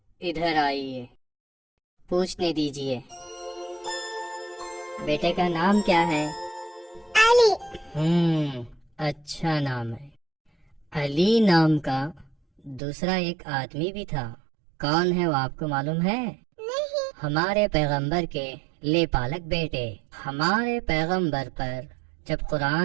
इधर आइए, पूछने दीजिए। बेटे का नाम क्या है? अली। अच्छा नाम है। अली नाम का दूसरा एक आदमी भी था, कौन है वो आपको मालूम है? नहीं। हमारे पैगंबर के लेपालक बेटे। हमारे पैगंबर पर जब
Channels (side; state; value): left; drops out; at 12.8 s